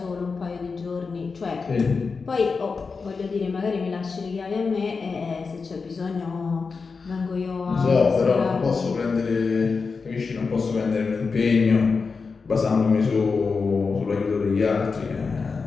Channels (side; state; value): right; quieter; 4.8 dB